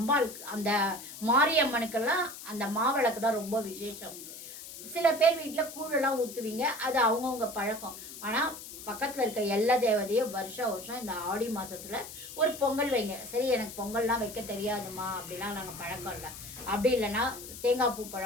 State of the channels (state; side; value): noise; left; hiss, 12 dB below the sound